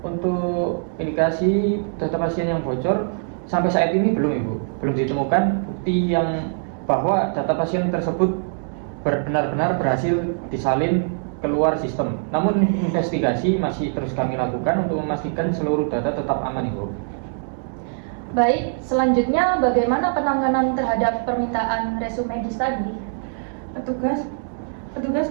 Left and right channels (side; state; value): left; silent; digital silence